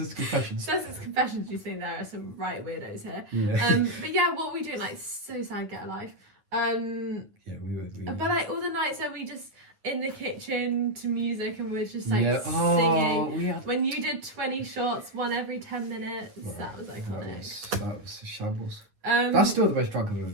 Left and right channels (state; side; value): late; left; 9.5 ms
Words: Confessions. Sussex Confessions. You think there are some right weirdos here. Yeah. But yeah, what were we doing? Like so sad. Get a life. Yeah, we were. But like all the nights where we just in the kitchen to music and we're just like Yeah. singing. We had. When you did 20 shots, one every 10 minutes, that was iconic. That was a shambles. That's still the most drunk I've ever